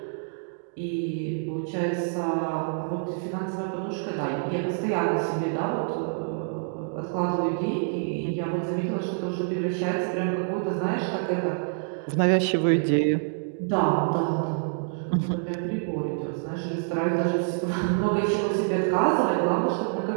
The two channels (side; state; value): left; silent; digital silence